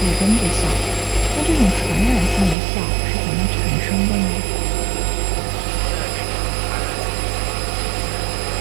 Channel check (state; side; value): drops out; left; at 2.6 s